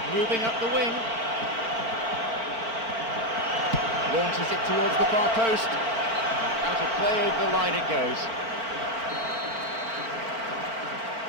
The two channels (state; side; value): late; left; 4.4 ms